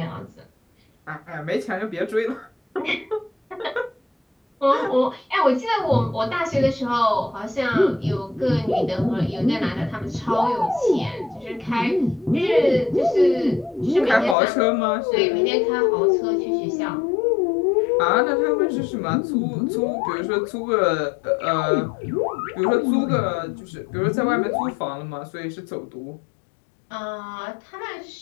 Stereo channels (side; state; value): right; drops out; at 14.4 s